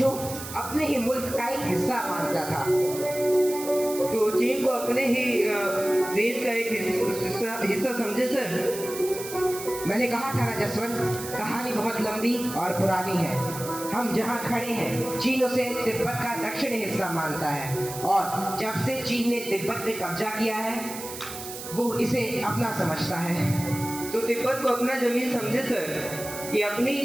अपने ही मुल्क का एक हिस्सा मानता था। तो चीन को अपने ही देश का एक हिस्सा समझे सर? मैंने कहा था ना जसवंत, कहानी बहुत लंबी और पुरानी है। हम जहाँ खड़े हैं चीन उसे तिब्बत का दक्षिणी हिस्सा मानता है, और जब से चीन ने तिब्बत पे कब्जा किया है वो इसे अपना समझता है। तो तिब्बत को अपना जमीन समझे सर? ये अपनी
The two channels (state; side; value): noise; right; hiss, 10 dB below the sound